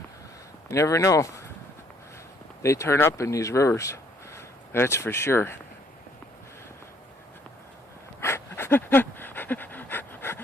You never know. They turn up in these rivers. That's for sure.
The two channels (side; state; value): both; normal; correlation 0.65